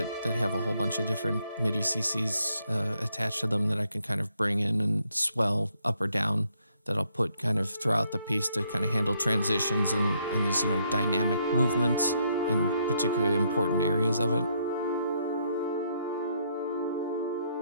have a whole bunch of different MIDI CCs attached to them that I can kind of bring in and swell up or down, that I'll put kind of throughout the piece to kind of handle transitions and these, dynamic movements in particularly important areas of it.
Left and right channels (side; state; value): both; inverted; correlation -0.73